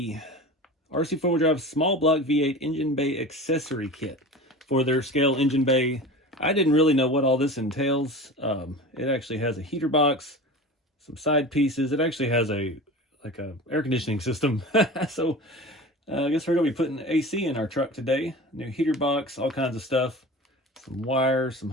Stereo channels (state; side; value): normal; both; correlation 0.34